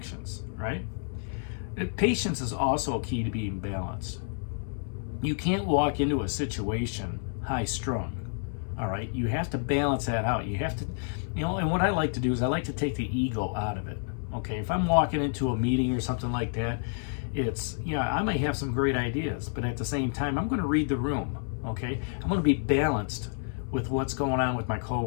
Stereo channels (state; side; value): silent; right; 58 dB below the other